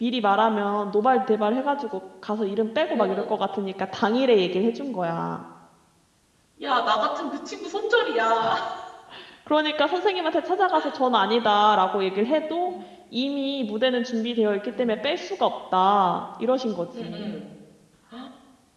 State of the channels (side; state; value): both; identical; correlation 1.00